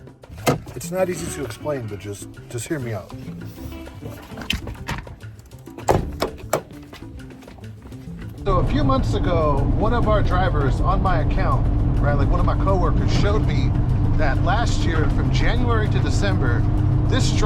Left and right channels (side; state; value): both; identical; correlation 1.00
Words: It's not easy to explain, but just hear me out. So a few months ago, one of our drivers on my account, right, like one of my coworkers showed me that last year from January to December, this